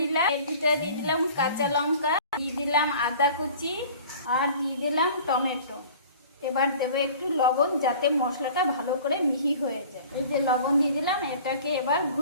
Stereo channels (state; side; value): inverted; both; correlation -0.45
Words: এর ভিতরে দিয়ে দিলাম কাঁচা লঙ্কা, দিয়ে দিলাম আদা কুচি, আর দিয়ে দিলাম টমেটো। এবার দেবো একটু লবণ, যাতে মশলাটা ভালো করে মিহি হয়ে যায়। এই যে লবণ দিয়ে দিলাম, এটাকে এবার